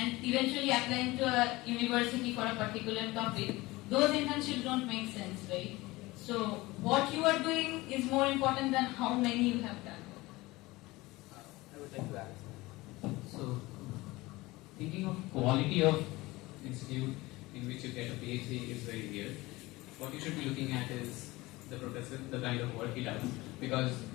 eventually applying to a university for a particular topic, those internships don't make sense, right? So what you are doing is more important than how many you have done. I would like to add. So, thinking of quality of institute in which you get a PhD is very weird. What you should be looking at is the professor, the kind of work he does, because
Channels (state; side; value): quieter; right; 20.5 dB